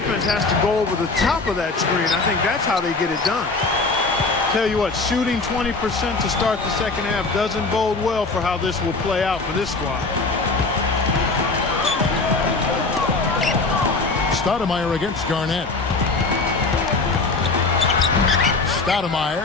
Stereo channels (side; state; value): right; quieter; 3.7 dB